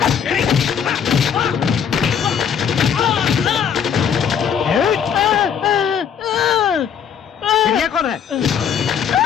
ये कौन है?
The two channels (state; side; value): quieter; right; 7.8 dB